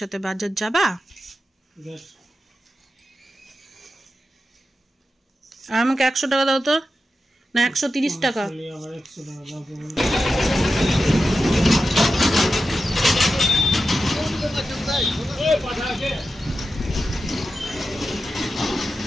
বাজার যাবা? আর আমাকে 100 টাকা দাও তো, না 130 টাকা।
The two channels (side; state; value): both; normal; correlation 0.91